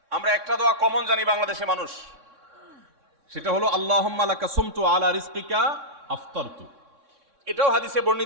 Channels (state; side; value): late; left; 3.6 ms